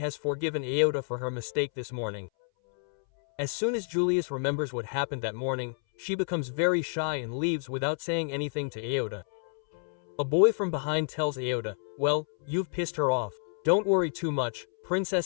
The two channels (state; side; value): silent; right; 58 dB below the other